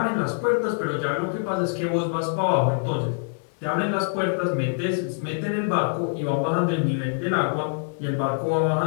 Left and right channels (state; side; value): silent; right; digital silence